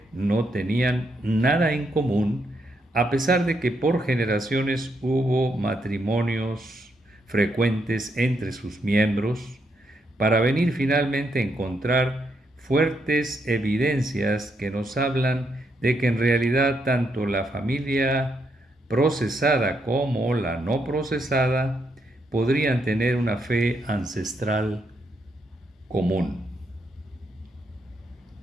no tenían nada en común, a pesar de que por generaciones hubo matrimonios frecuentes entre sus miembros, para venir finalmente a encontrar fuertes evidencias que nos hablan de que en realidad tanto la familia procesada como la no procesada podrían tener una fe ancestral común.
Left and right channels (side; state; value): both; normal; correlation 0.78